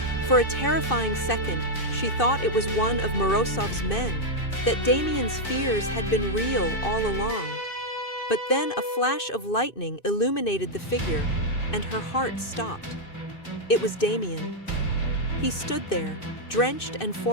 For a terrifying second, she thought it was one of Morozov's men, that Damien's fears had been real all along. But then a flash of lightning illuminated the figure, and her heart stopped. It was Damien. He stood there, drenched and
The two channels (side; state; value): right; late; 2.6 ms